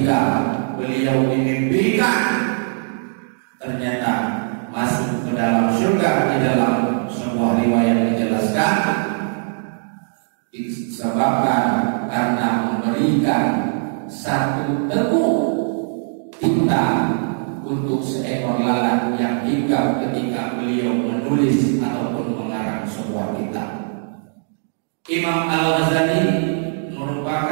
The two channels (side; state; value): left; silent; digital silence